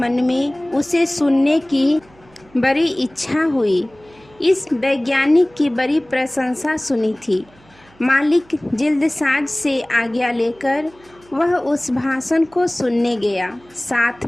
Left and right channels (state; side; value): noise; right; hum, 29 dB below the sound